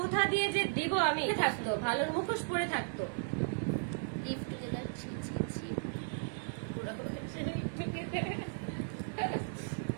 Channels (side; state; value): left; silent; 54 dB below the other